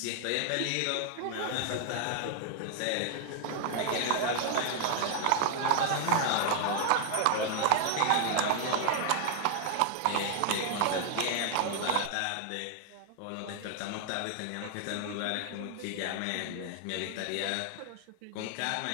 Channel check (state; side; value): different; both; correlation 0.00